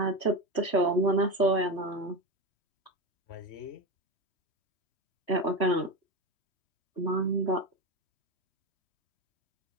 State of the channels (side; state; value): right; late; 3.1 ms